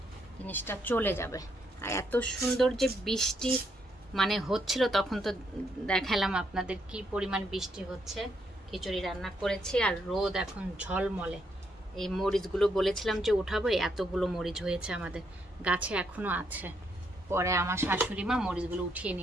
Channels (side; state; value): both; normal; correlation 0.76